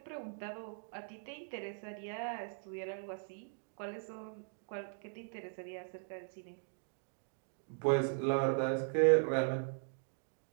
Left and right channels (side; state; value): left; silent; digital silence